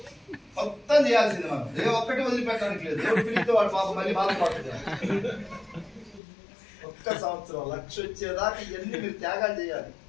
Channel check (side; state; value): right; drops out; at 6.2 s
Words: మొత్తం చేయాల్సింది. మనం ఏ ఒక్కటి వదిలిపెట్టడానికి లేదు. ఎవరు పిలిస్తే వాడు పాప మళ్ళీ బాధపడుతుంది. ఒక్క సంవత్సరం 1,00,000 వచ్చేదాకా ఇవన్నీ మీరు త్యాగాలు చేయాలి.